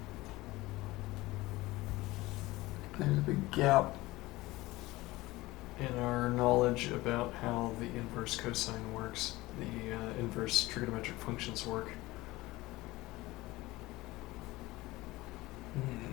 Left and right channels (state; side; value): quieter; right; 19.4 dB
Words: there's a big gap in our knowledge about how the inverse cosine works, the inverse trigonometric functions work.